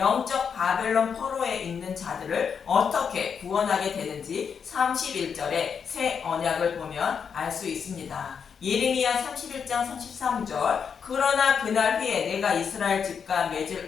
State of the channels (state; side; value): quieter; right; 6.7 dB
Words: 바벨론 포로에 있는 자들을 어떻게 구원하게 되는지 31절의 새 언약을 보면 알 수 있습니다. 예레미야 31장 33절 그러나 그날 후에 내가 이스라엘 집과